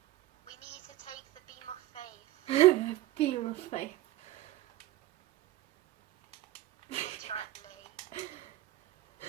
We need to take the beam of faith. Beam of faith. Literally.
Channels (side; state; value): left; quieter; 15.9 dB